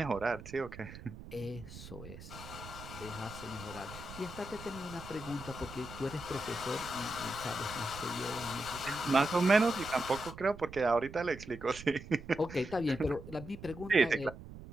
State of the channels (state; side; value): noise; right; rumble, 14 dB below the sound